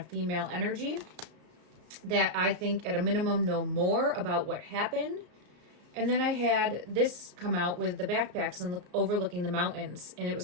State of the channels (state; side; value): late; left; 34 ms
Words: female energy that I think at a minimum know more about what happened. And then I had this come out with the backpacks and overlooking the mountains, and it